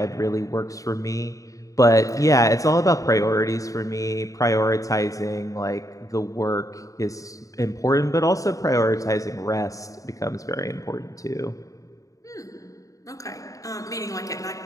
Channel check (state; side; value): late; right; 0.16 ms